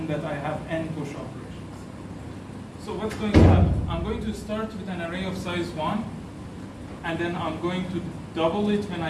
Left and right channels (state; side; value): identical; both; correlation 1.00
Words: that I have n push operations. So what's going to happen? I'm going to start with an array of size 1, and then I'm going to double it when